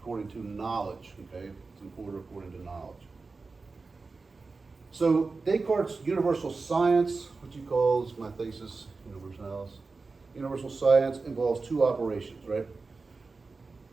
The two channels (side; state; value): left; quieter; 4.1 dB